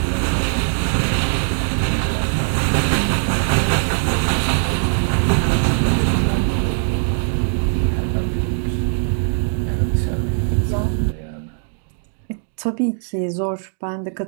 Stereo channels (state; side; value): silent; left; digital silence